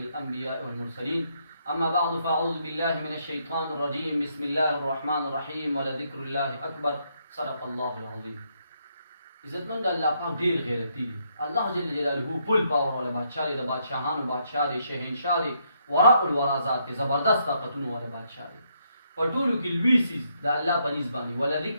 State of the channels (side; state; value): both; inverted; correlation -0.75